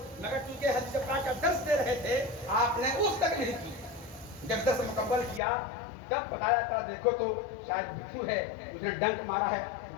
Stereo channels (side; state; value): right; drops out; at 5.4 s